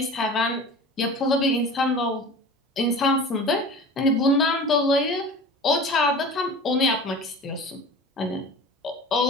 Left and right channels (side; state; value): both; normal; correlation 0.38